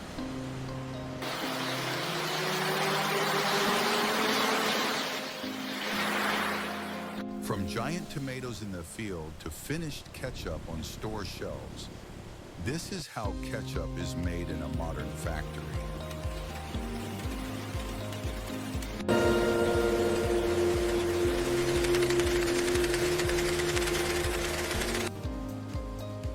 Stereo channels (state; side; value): identical; both; correlation 1.00